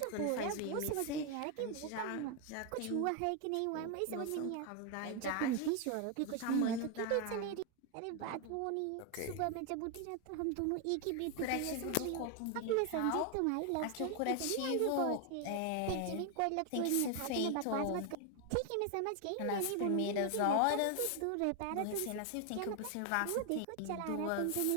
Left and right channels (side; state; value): both; different; correlation 0.01